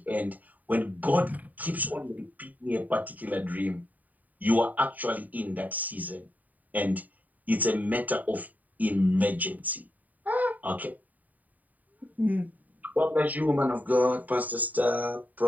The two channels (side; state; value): left; late; 0.078 ms